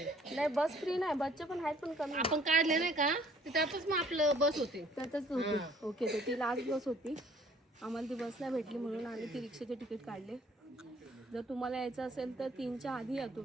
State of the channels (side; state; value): both; normal; correlation 0.58